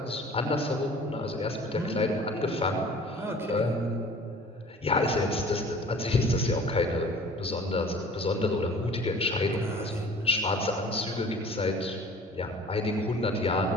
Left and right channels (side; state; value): both; normal; correlation 0.47